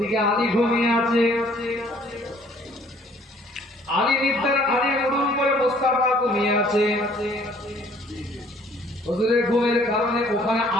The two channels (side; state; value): both; normal; correlation 0.58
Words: আলী ঘুমিয়ে আছে, আলী নিদ্রার আলী উড়ুম করে মোস্তাফা ঘুমিয়ে আছে। হুজুরের ঘুমের কারণে ওখানে